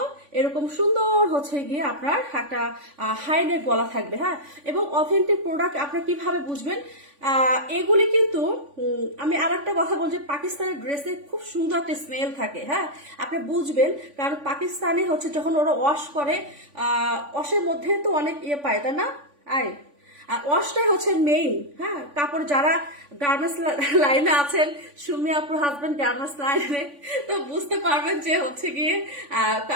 এরকম সুন্দর হচ্ছে গিয়ে আপনার একটা হাই নেক গলা থাকবে, হ্যাঁ এবং অথেন্টিক প্রোডাক্ট আপনার কিভাবে বুঝবেন, এগুলি কিন্তু আমি আর একটা কথা বলছি, পাকিস্তানের ড্রেসে খুব সুন্দর একটা স্মেল থাকে, হ্যাঁ আপনি বুঝবেন, কারণ পাকিস্তানে হচ্ছে যখন ওরা ওয়াশ করে ওয়াশের মধ্যে তো অনেক পায় তাই না, আয় আর ওয়াশটাই হচ্ছে মেইন, হ্যাঁ কাপড় যারা গার্মেন্টস লাইনে আছেন, সুমি আপুর হাজবেন্ড গার্মেন্টস লাইনে, তো বুঝতে পারবেন যে হচ্ছে গিয়ে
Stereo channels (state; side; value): late; left; 3.5 ms